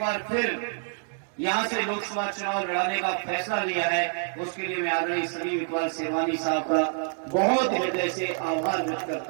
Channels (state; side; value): silent; left; digital silence